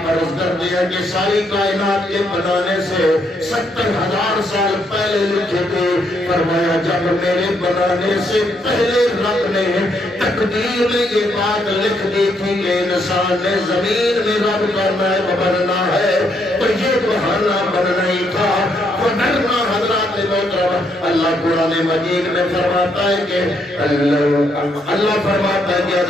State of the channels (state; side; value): normal; both; correlation 0.74